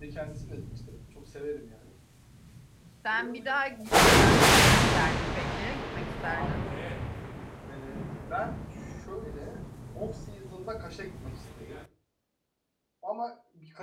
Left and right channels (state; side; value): identical; both; correlation 1.00